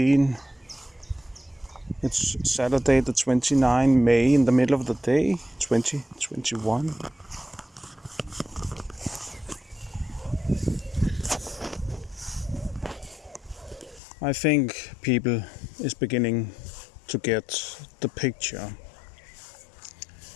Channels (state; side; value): drops out; right; at 14.0 s